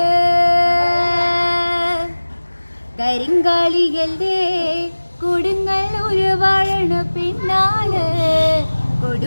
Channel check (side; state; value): both; inverted; correlation -1.00